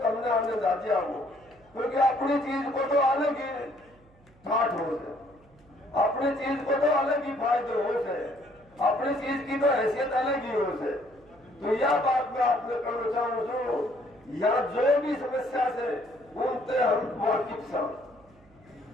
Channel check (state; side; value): noise; right; hum, 29 dB below the sound